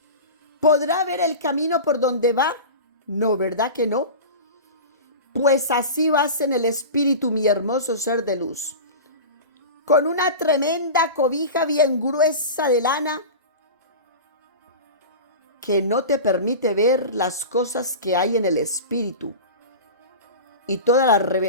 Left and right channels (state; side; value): inverted; both; correlation -0.30